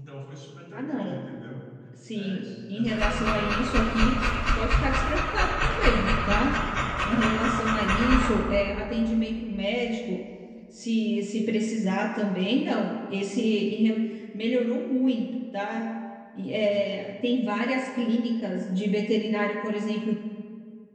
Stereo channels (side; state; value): both; identical; correlation 1.00